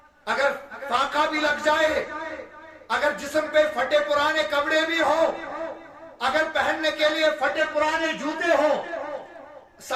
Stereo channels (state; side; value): identical; both; correlation 1.00